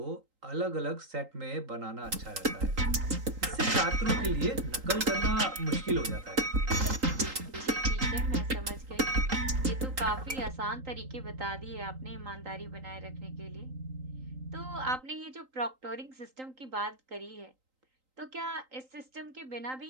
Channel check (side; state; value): left; late; 3.8 ms